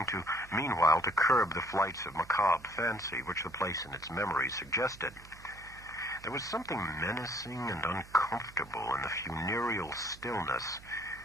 meanwhile to curb the flights of macabre fancy which the place and its memories suggested. There was something menacing and uncomfortable in the funereal stillness,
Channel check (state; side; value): noise; right; hum, 20 dB below the sound